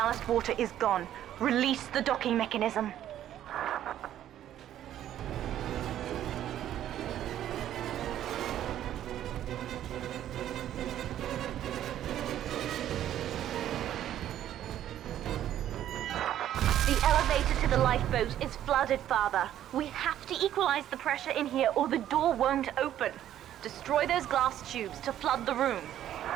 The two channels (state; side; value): quieter; left; 11.6 dB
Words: water is gone. Release the docking mechanism. The elevator to the lifeboat is flooded, Father. We have to equalize the pressure in here or the door won't open. Destroy those glass tubes to flood the room.